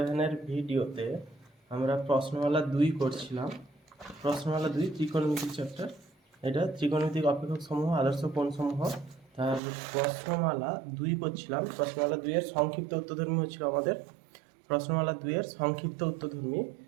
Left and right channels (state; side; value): drops out; left; at 9.6 s